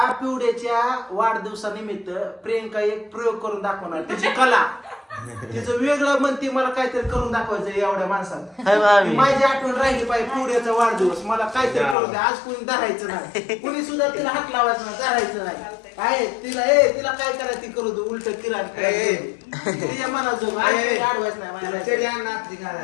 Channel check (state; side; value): drops out; right; at 12.0 s